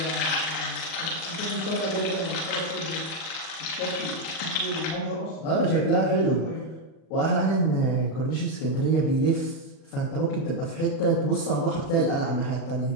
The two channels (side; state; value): right; late; 40 ms